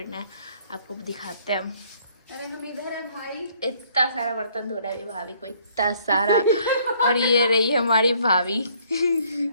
है, आपको दिखाते हैं हम। अरे हम इधर है भाई। इतना सारा बर्तन धोना है अभी भाभी को, इतना सारा। और ये रही हमारी भाभी।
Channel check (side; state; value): both; inverted; correlation -0.63